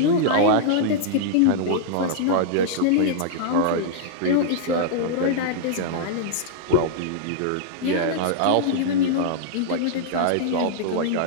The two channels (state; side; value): different; both; correlation -0.01